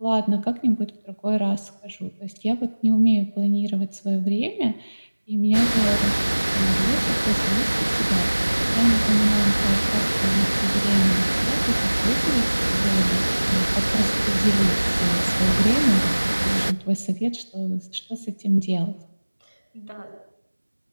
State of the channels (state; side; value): inverted; both; correlation -1.00